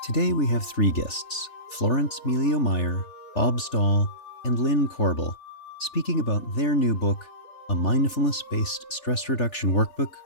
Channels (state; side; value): late; right; 3.4 ms